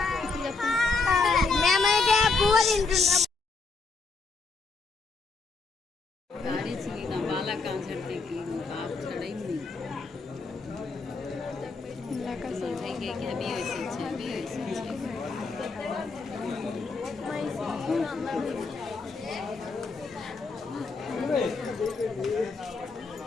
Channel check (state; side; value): quieter; right; 4.2 dB